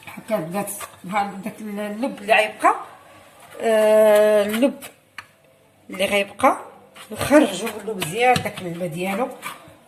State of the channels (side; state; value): both; identical; correlation 1.00